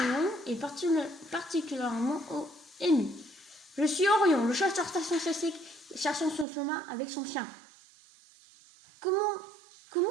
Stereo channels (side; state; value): left; drops out; at 6.5 s